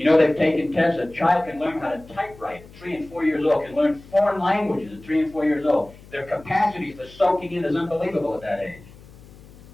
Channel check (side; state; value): left; noise; hum, 21 dB below the sound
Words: know, they've taken tests. A child can learn how to typewrite at 3 and 4 years old, can learn foreign languages at 3 and 4 years old. Their capacity for soaking in is unbelievable at that age.